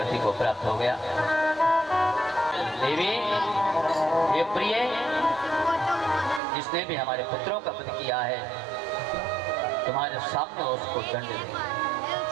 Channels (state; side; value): drops out; left; at 6.4 s